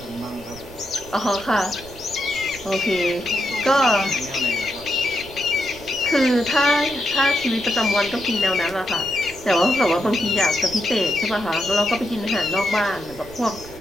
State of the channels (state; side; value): noise; right; rumble, 18 dB below the sound